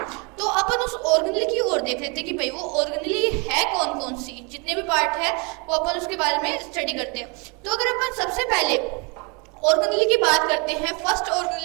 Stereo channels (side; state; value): left; quieter; 31.7 dB